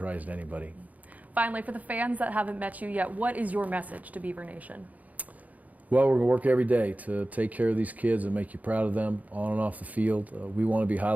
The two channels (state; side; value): late; left; 0.076 ms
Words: to anybody. Finally, for the fans that haven't met you yet, what is your message to Beaver Nation? Well, we're going to work every day to take care of these kids and make you proud of them on and off the field. We want to be